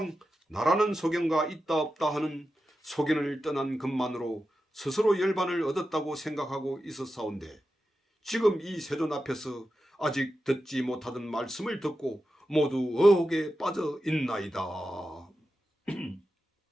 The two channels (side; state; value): both; normal; correlation 0.91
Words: 나라는 소견과 있다 없다 하는 소견을 떠난 것만으로 스스로 열반을 얻었다고 생각하고 있었사온데, 지금 이 세존 앞에서 아직 듣지 못하던 말씀을 듣고 모두 의혹에 빠져 있나이다.